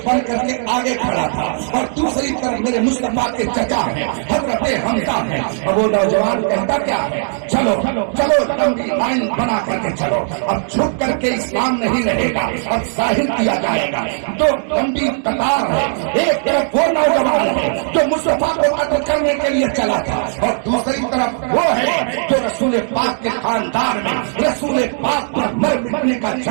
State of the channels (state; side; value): silent; left; digital silence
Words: بن کر کے آگے کھڑا تھا اور دوسری طرف میرے مصطفیٰ کے چچا ہیں حضرت حمزہ ہیں، اور وہ نوجوان کہتا کیا ہے چلو چلو لمبی لائن بنا کر کے چلو، اب چھپ کر کے اسلام نہیں رہے گا، اب ظاہر کیا جائے گا۔ تو لمبی قطار ہے، ایک طرف وہ نوجوان ہے جو مصطفیٰ کو قتل کرنے کے لیے چلا تھا اور دوسری طرف وہ ہے جو رسول پاک کے خاندان میں رسول پاک پر مر مٹنے کا